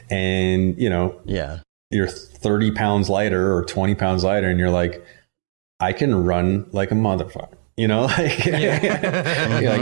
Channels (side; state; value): left; silent; digital silence